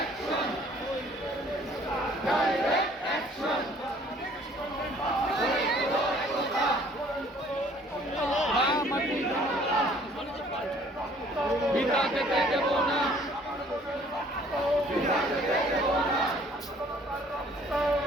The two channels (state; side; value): normal; both; correlation 0.57